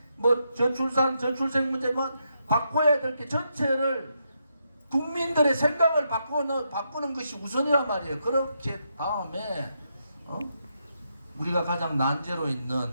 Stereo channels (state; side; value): inverted; both; correlation -0.81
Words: 뭐 저출산 저출생 문제만 바꿔야 될 게 전체를 국민들의 생각을 바꾸는 것이 우선이란 말이에요. 그렇게 다음에 우리가 가장 난제로